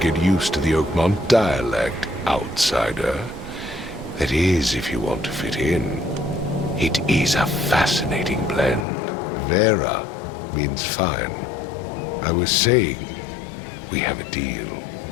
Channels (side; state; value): right; drops out; at 8.8 s